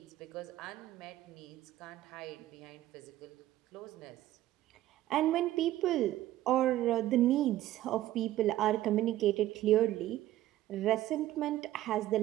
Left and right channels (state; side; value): quieter; left; 14.5 dB